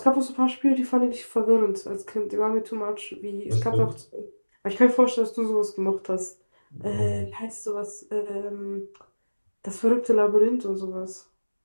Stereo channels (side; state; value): both; inverted; correlation -1.00